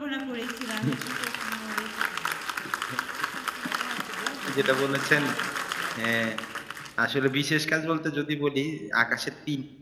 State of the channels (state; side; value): identical; both; correlation 1.00